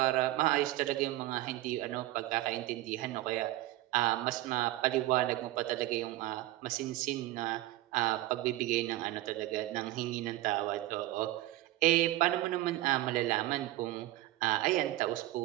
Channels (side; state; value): left; quieter; 16.6 dB